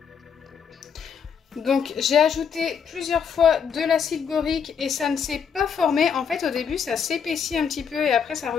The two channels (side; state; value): right; quieter; 6.9 dB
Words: Donc j'ai ajouté plusieurs fois de l'acide borique et ça ne s'est pas formé. En fait au début ça s'épaissit un petit peu et après ça